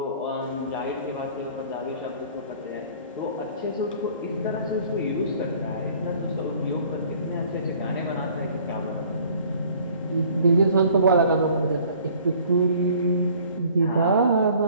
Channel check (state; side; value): inverted; both; correlation -0.54